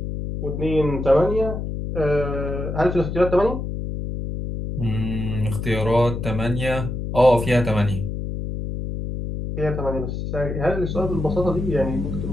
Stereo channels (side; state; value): left; noise; hum, 5 dB below the sound